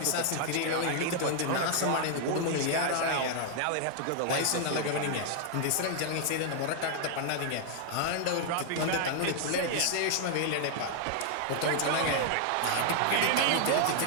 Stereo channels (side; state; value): both; different; correlation 0.00